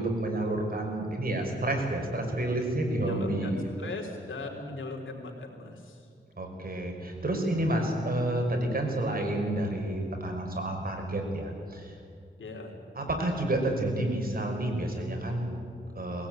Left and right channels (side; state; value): both; normal; correlation 0.62